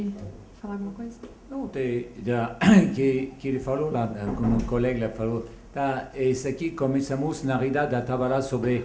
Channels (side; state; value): both; identical; correlation 1.00